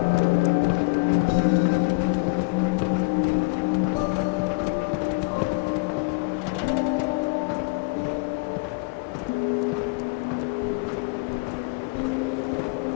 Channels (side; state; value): right; quieter; 30.4 dB